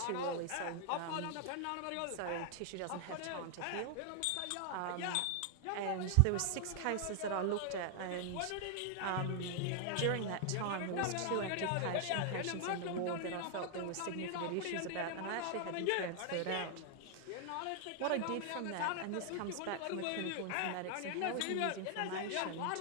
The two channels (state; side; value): different; both; correlation 0.00